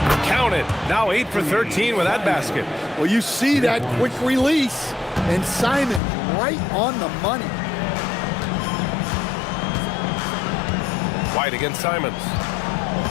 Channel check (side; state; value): right; drops out; at 6.0 s